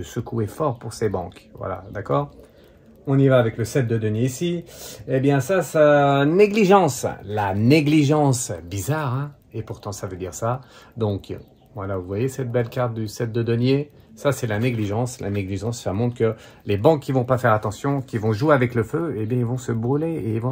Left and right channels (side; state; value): both; identical; correlation 1.00